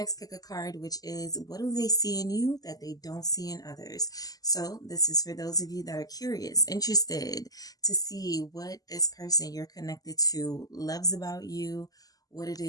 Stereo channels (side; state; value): right; late; 0.17 ms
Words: pick a card, which is what do they see in you that they don't see in others? So, this is for those of you that are curious, interested to see what this person you're connected to loves about you, what it